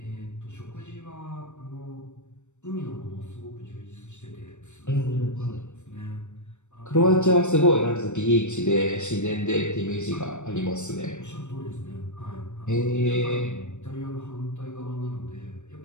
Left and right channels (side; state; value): right; late; 0.84 ms